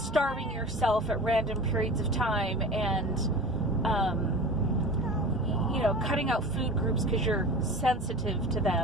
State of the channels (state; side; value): normal; both; correlation 0.35